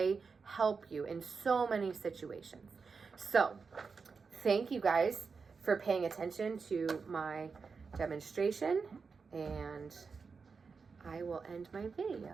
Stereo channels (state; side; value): quieter; left; 5.1 dB